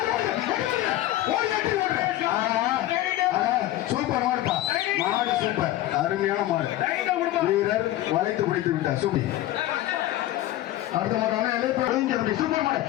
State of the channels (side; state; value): right; quieter; 14.8 dB